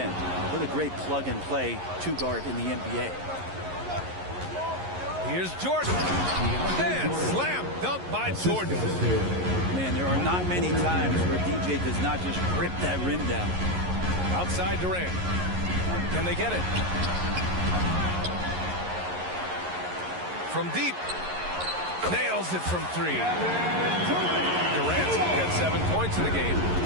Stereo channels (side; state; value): left; late; 11 ms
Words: What a great plug-and-play two-guard in the NBA. Here's Jordan. And slam dunk by Jordan. Man, there are not many times where DJ does not just rip that rim down. Outside Durant. Can they get it? From deep. Nails it from three. Durant got 7 points in the game.